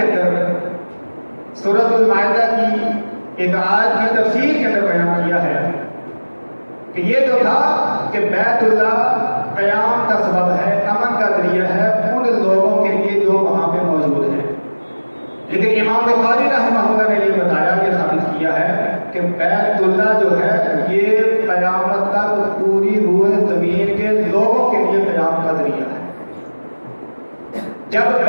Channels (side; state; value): both; inverted; correlation -1.00